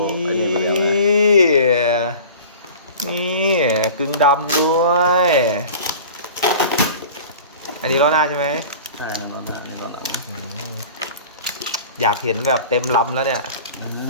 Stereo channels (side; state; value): both; inverted; correlation -0.40